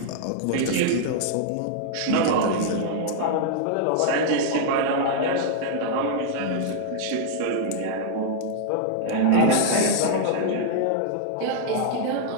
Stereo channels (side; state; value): both; different; correlation -0.01